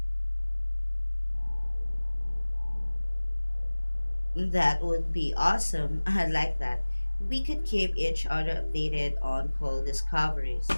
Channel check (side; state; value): both; inverted; correlation -1.00